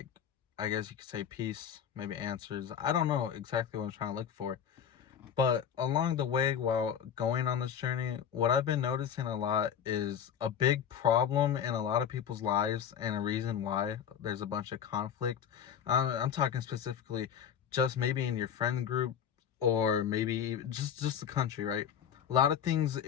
I guess you could say peace, maybe answers. I don't know exactly what I'm trying to look for. But along the way, while going on this journey, what I've been noticing a lot is a big problem in a lot of people's lives and a reason why there's a bunch of conflict. I'm talking specifically just maybe in your friend group or maybe just the country, right? A lot of things,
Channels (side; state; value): right; quieter; 8.5 dB